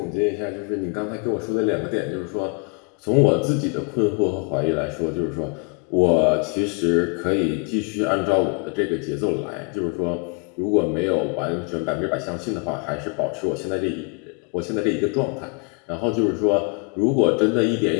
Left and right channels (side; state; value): right; quieter; 35.2 dB